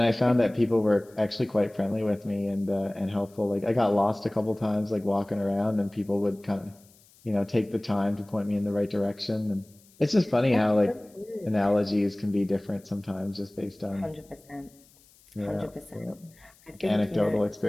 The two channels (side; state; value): left; noise; hiss, 29 dB below the sound